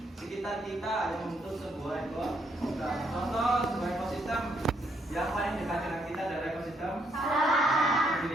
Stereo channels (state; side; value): normal; both; correlation 0.73